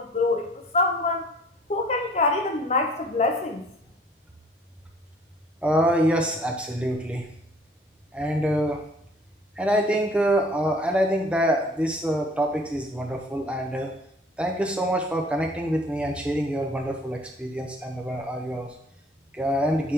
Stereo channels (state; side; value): normal; both; correlation 0.55